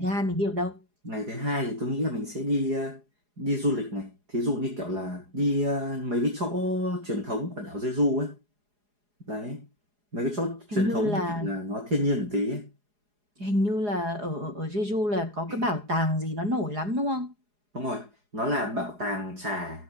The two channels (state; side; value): late; left; 4.8 ms